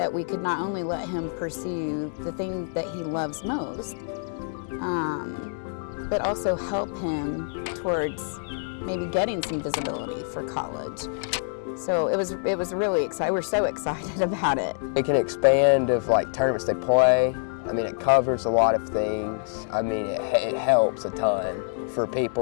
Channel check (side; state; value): right; silent; digital silence